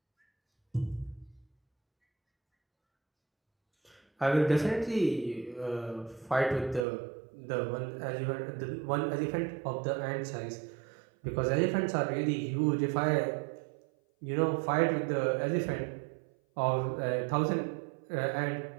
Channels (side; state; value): left; drops out; at 6.9 s